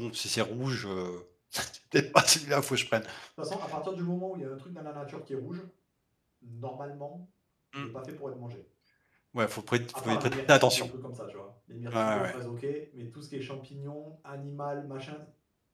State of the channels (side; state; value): both; identical; correlation 1.00